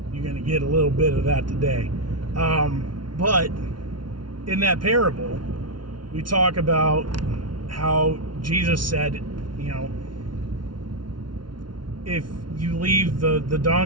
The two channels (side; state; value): left; late; 0.71 ms